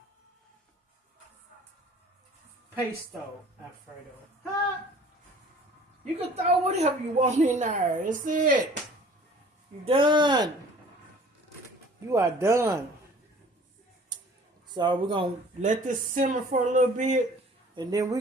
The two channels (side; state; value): both; normal; correlation 0.50